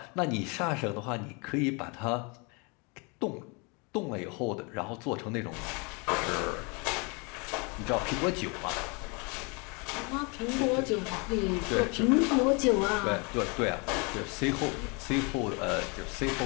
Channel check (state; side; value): quieter; right; 31.4 dB